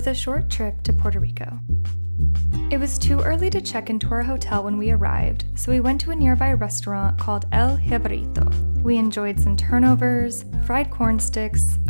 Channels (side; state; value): both; inverted; correlation -1.00